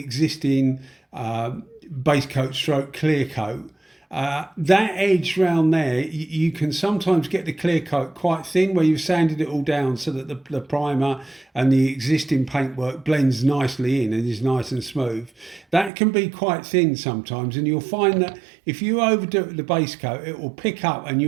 base coat stroke clear coat, that edge round there, you can sometimes get the clear coat quite thin where you've sanded it all down so that the primer and the existing paintwork blends nicely in and is nice and smooth. That can be quite thin sometimes, and you'll find that if you overdo it with the base coat, it will pick up and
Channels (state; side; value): drops out; left; at 15.9 s